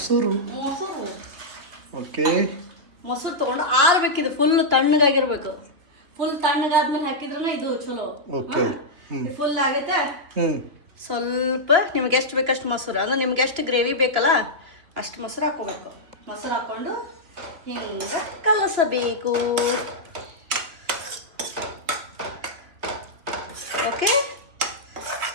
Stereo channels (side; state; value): left; late; 2.9 ms